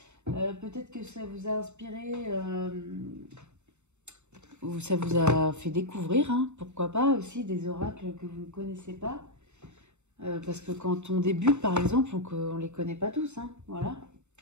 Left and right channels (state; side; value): late; left; 0.83 ms